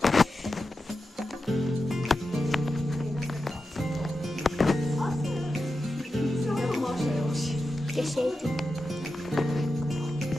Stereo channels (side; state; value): both; normal; correlation 0.90